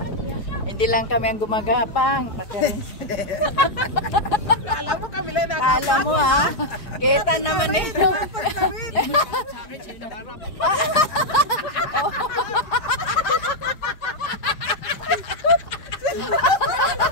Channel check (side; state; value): right; late; 4.8 ms